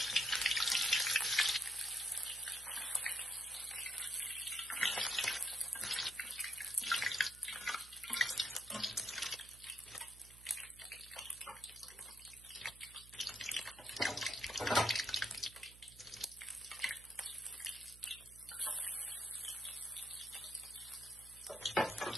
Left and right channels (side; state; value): right; noise; hum, 20 dB below the sound